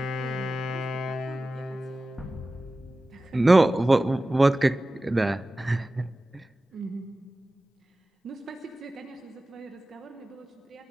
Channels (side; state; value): both; normal; correlation 0.96